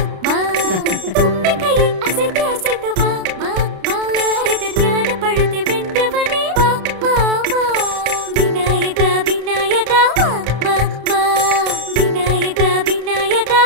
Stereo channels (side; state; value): left; late; 32 ms